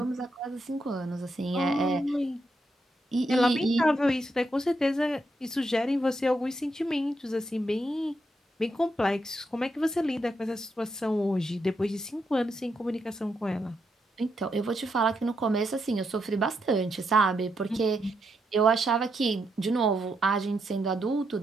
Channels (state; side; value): normal; both; correlation 0.80